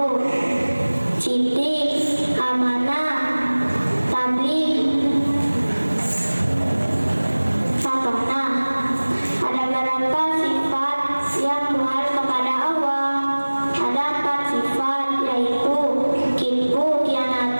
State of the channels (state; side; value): inverted; both; correlation -1.00